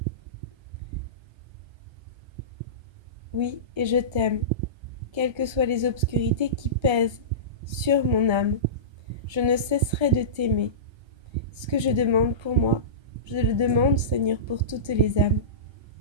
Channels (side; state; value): left; late; 1.3 ms